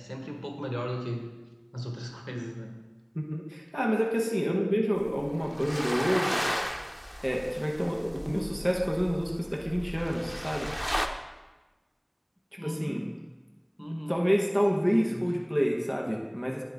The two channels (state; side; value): identical; both; correlation 1.00